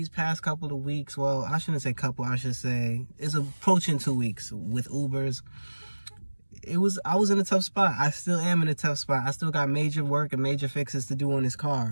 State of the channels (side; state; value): both; inverted; correlation -1.00